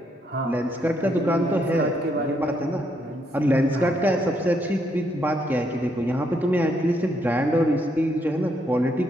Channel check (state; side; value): normal; both; correlation 0.75